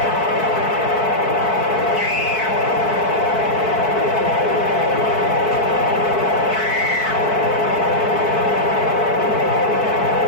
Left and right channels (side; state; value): right; late; 4.5 ms